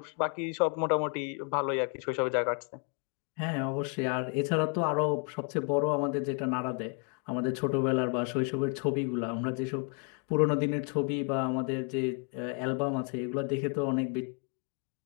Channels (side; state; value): right; quieter; 36.4 dB